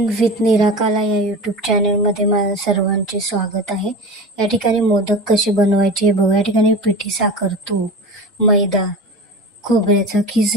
with निराकाला या YouTube चॅनलमध्ये माझं सर्वांचे स्वागत आहे. या ठिकाणी मोदक कसे बनवायचे हे बघा. या ठिकाणी पिठी साखर, तूप, मैदा, खोबऱ्याचा खीस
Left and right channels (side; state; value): both; normal; correlation 0.31